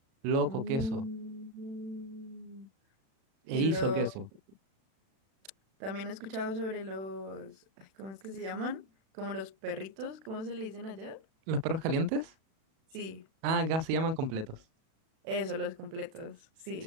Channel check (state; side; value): late; left; 36 ms